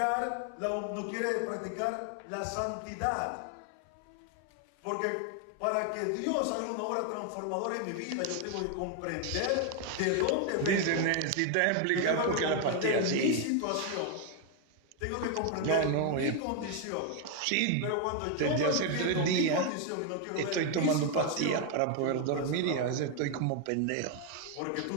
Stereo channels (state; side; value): different; both; correlation 0.01